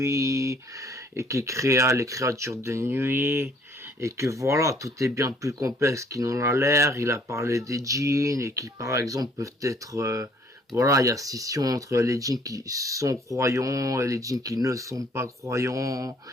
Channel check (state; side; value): normal; both; correlation 0.60